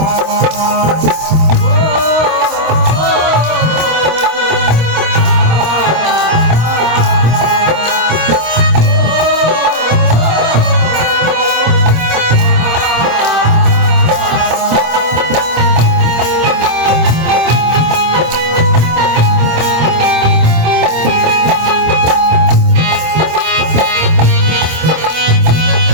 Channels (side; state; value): left; late; 26 ms